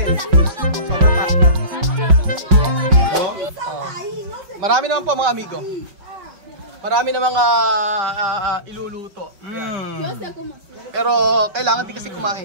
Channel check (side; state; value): left; late; 5.4 ms